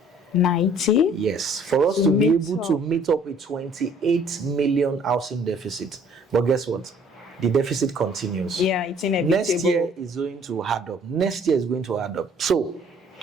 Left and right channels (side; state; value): both; normal; correlation 0.57